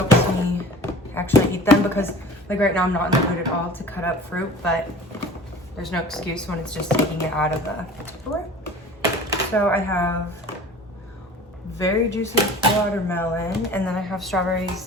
me actually eat them, because like right now I'm not in the mood at all to cut up fruit, but there's no excuse when it's just taking it out of the Tupperware. So I have very juicy watermelon, and then I have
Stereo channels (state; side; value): normal; both; correlation 0.41